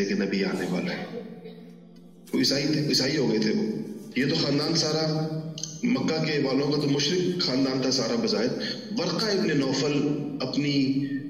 کہ نبی آنے والا ہے. وہ عیسائی ہو گئے تھے. وہ یہ تو خاندان سارا مکہ کے والوں کا تو مشرک خاندان تھا سارا بظاہر. ورقہ ابن نوفل اپنی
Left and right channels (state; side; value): identical; both; correlation 1.00